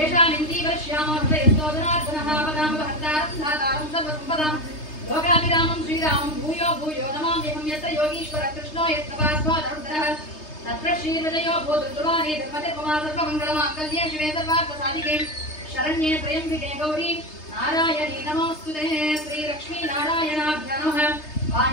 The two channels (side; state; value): right; late; 3.3 ms